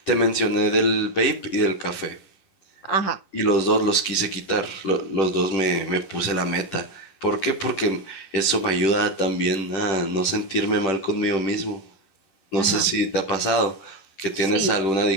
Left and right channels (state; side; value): late; right; 10 ms